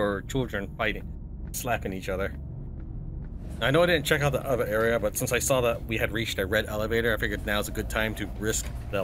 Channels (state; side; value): identical; both; correlation 1.00